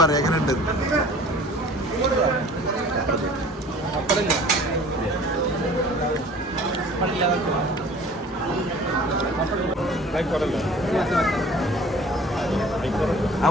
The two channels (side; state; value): both; normal; correlation 0.48